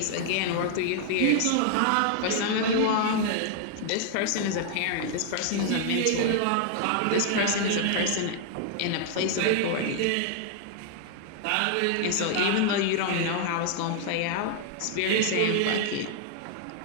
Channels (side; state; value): both; different; correlation 0.00